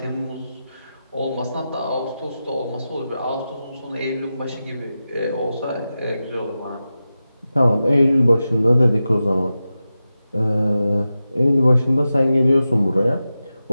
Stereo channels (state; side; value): inverted; both; correlation -0.92